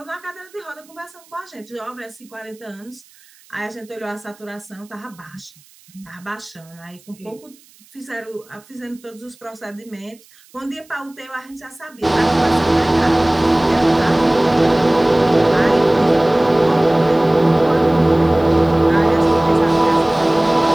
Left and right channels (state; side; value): noise; right; hiss, 28 dB below the sound